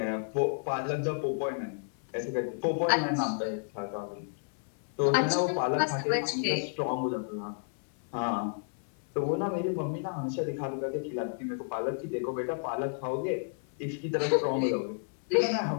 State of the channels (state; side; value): silent; right; 57 dB below the other